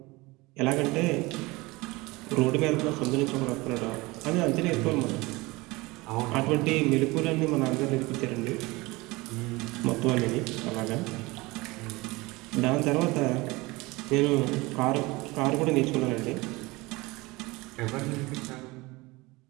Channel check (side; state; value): left; quieter; 22.6 dB